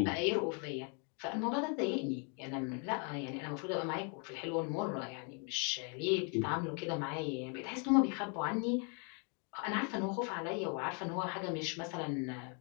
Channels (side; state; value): right; quieter; 38.3 dB